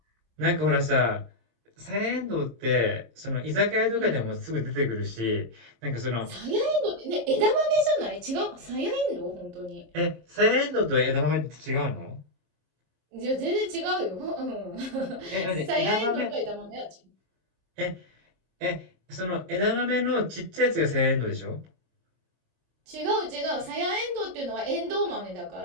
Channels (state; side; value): late; left; 26 ms